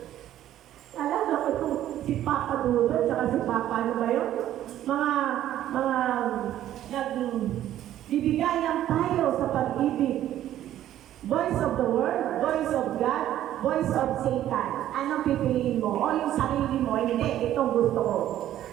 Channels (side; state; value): left; quieter; 12.3 dB